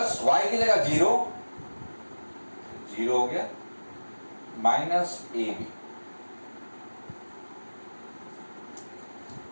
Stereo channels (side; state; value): both; inverted; correlation -1.00